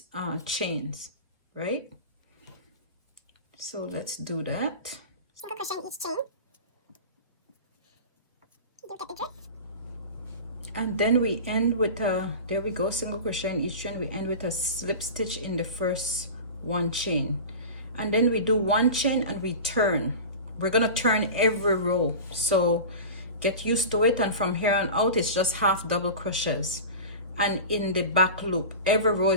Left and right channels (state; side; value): inverted; both; correlation -0.32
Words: chains, right? So let's do that. Single crochet in each chain. You get the drift. And then we end with a, there we go, single crochet in each chain. We end with a slip stitch in the first one chain, and then we do one chain and we turn. We're gonna turn every row, so get used to it. And from here on out, it's just half double crochets. And in the back loop, every row